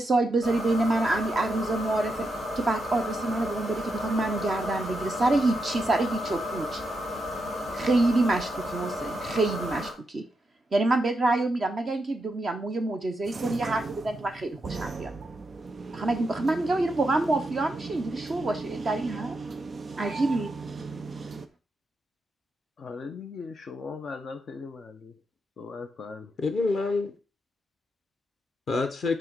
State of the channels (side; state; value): both; normal; correlation 0.84